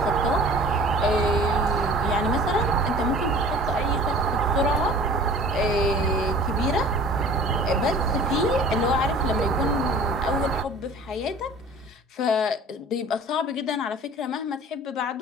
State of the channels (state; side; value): normal; both; correlation 0.45